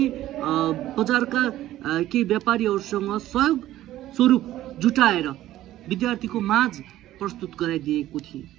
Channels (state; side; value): quieter; left; 14.2 dB